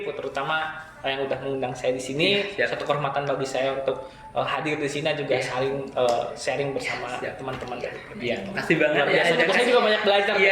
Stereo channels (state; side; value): identical; both; correlation 1.00